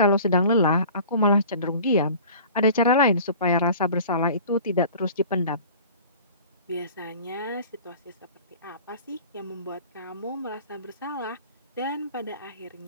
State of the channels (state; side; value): inverted; both; correlation -0.43